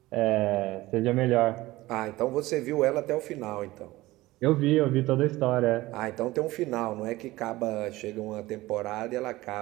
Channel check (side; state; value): left; quieter; 18.5 dB